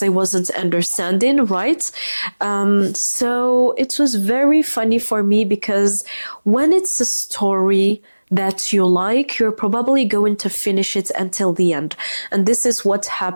I wasn't understanding, right? So it was very funny for me because when it's a story that you like, you're probably going to finish it until the end. And this is what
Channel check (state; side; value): inverted; both; correlation -1.00